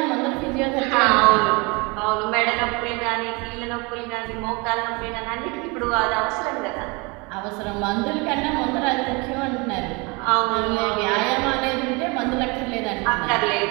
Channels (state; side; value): quieter; left; 28.0 dB